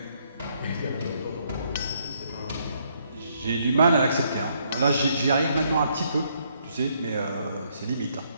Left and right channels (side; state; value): both; inverted; correlation -0.71